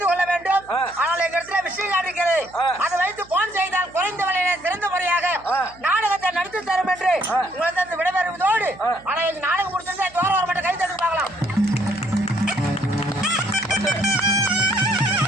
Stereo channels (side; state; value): right; noise; hum, 24 dB below the sound